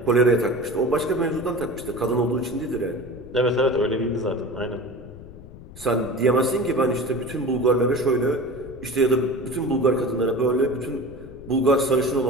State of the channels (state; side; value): noise; left; rumble, 17 dB below the sound